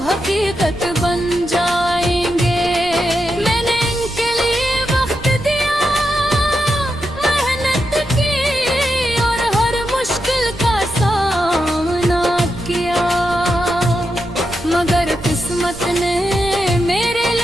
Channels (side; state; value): right; noise; rumble, 16 dB below the sound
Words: हकीकत बन जाएंगे। मैंने इनके लिए वक्त दिया, मेहनत की और हर मुश्किल का सामना किया, मगर किस्मत ने मेरे